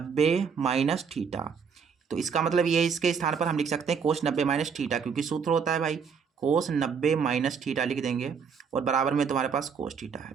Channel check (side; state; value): left; quieter; 6.3 dB